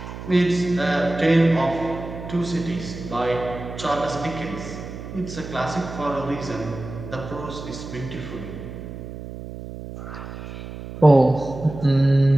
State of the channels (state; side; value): noise; right; hum, 11 dB below the sound